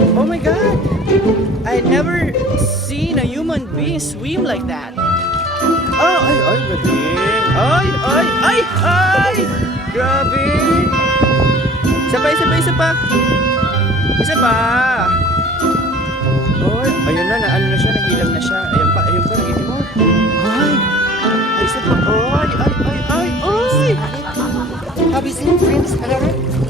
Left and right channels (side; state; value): both; normal; correlation 0.47